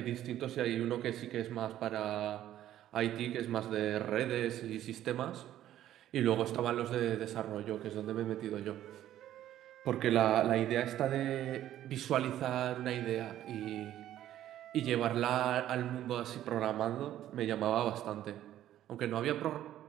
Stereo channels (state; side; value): quieter; left; 12.4 dB